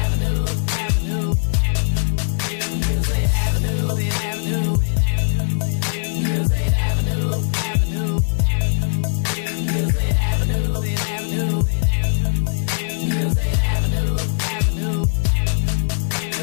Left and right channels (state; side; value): silent; right; digital silence